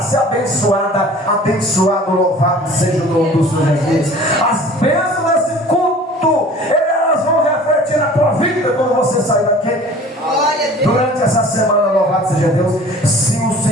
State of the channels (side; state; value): both; normal; correlation 0.46